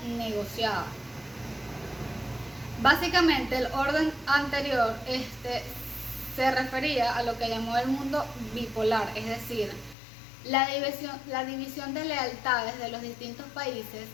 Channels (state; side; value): drops out; right; at 10.0 s